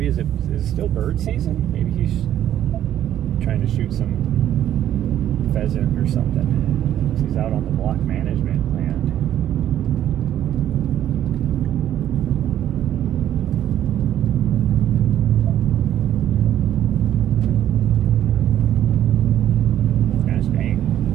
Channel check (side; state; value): left; quieter; 11.4 dB